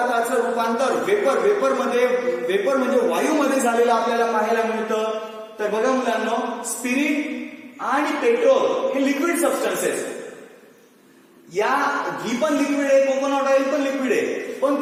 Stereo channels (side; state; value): both; identical; correlation 1.00